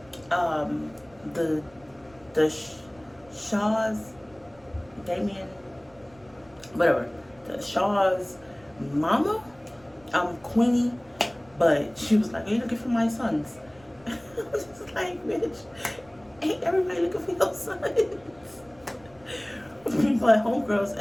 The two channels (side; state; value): right; noise; rumble, 28 dB below the sound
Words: the Shaw's, Damien, whatever, the Shaw's mama, Queenie, but she was like, "Are you looking for my sons?" I was just like, "Bitch, ain't everybody looking for your sons?" But homegirl's